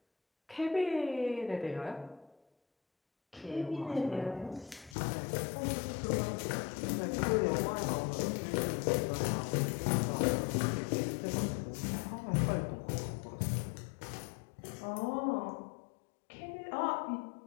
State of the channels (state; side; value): drops out; right; at 5.0 s